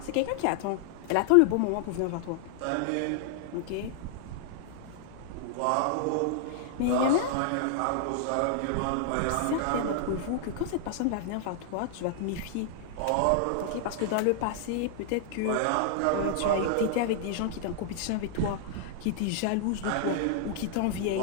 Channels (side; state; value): both; different; correlation -0.01